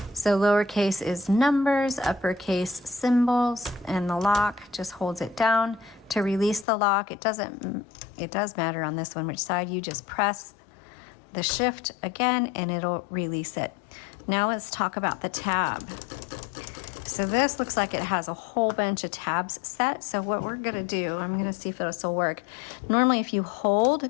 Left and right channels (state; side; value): drops out; right; at 6.7 s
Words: So lowercase is numbers, uppercase symbols, and the lock just holds it down. To release the lock, it does matter on this one which side. You just press the shift again and it'll release it. Now let's talk about the tab. So this looks like it has a whole bunch of tabs set. So what we're gonna do, I'm gonna see if this will work. Normally if you